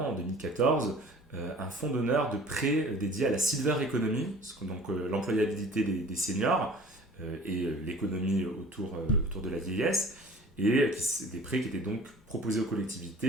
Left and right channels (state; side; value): normal; both; correlation 0.47